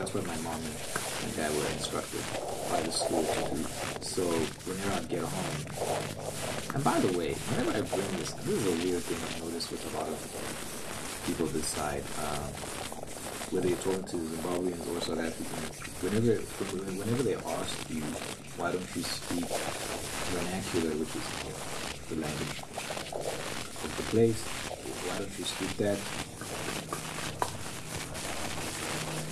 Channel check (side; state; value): both; identical; correlation 1.00